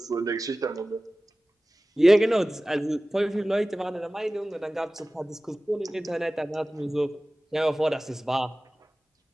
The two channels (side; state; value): both; normal; correlation 0.97